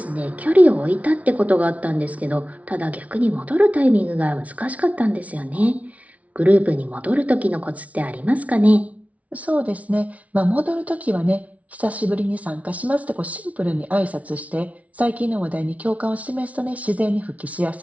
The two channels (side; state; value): left; late; 0.067 ms